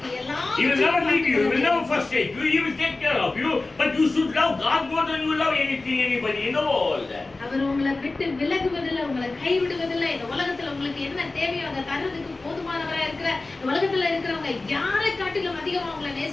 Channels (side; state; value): right; quieter; 3.3 dB